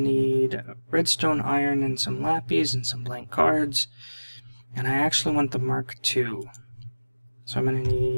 redstone, iron, and some lapis and some blank cards. And I actually want the Mark II. So I'm going to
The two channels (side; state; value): both; inverted; correlation -1.00